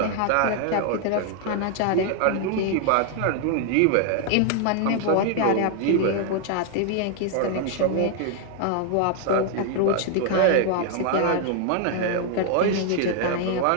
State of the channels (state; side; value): different; both; correlation 0.00